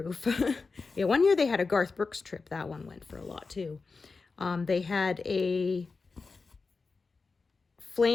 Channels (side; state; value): right; quieter; 4.3 dB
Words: Yeah, one year they had a Garth Brooks trip. That one went for a lot too. They had a